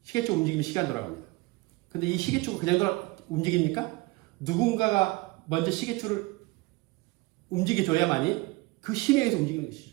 시계추 움직이면 시간 돌아갑니다. 근데 이 시계추가 그냥 움직입니까? 누군가가 먼저 시계추를 움직여줘야만이 그 힘에 의해서 움직이는 것이죠.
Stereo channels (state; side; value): quieter; left; 23.1 dB